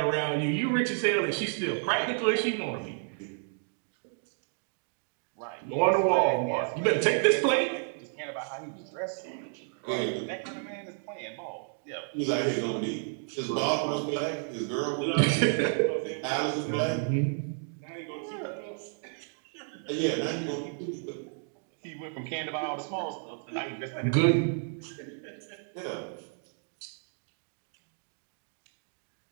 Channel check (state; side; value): silent; left; 57 dB below the other